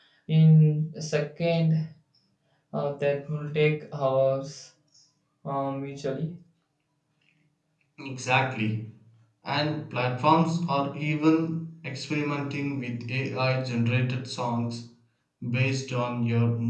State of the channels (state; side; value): identical; both; correlation 1.00